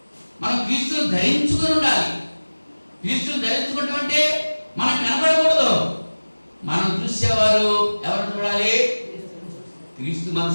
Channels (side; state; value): both; inverted; correlation -1.00